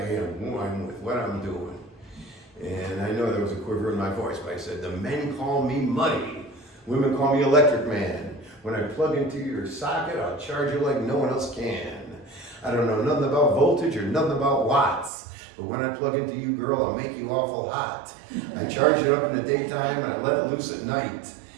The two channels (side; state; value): left; drops out; at 15.1 s